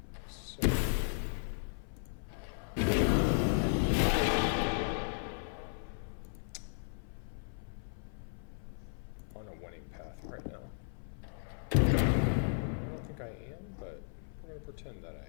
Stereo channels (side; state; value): right; silent; 54 dB below the other